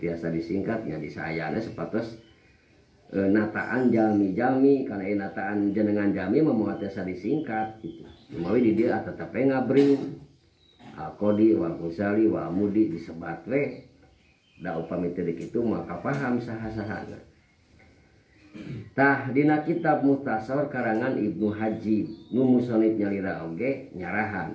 disingkatnya disayana sepatos nataan jalmi-jalmi karena nataan jenengan jalmi mah moal tiasa disingkat gitu. Mawi di dieu tetep ngabring Al-Qadi wal Ghazali wa Amudi disebat we da upami teu kitu mah kapaham saha-sahana. Tah dina kitab Muhtasor karangan Ibnu Hajib nu musannif nyalira oge nyarahan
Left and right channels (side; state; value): both; identical; correlation 1.00